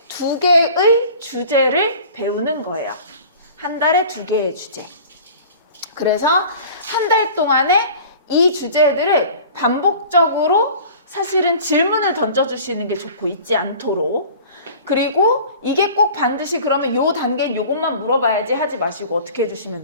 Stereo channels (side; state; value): both; inverted; correlation -0.43